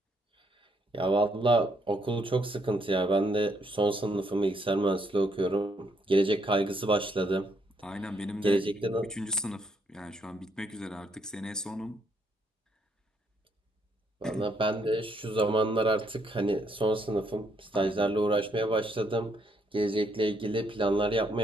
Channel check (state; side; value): normal; both; correlation 0.72